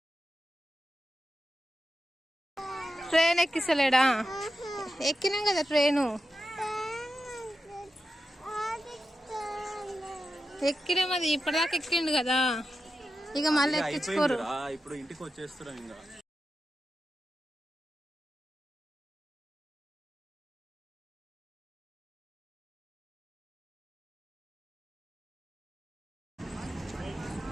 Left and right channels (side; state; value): both; normal; correlation 0.91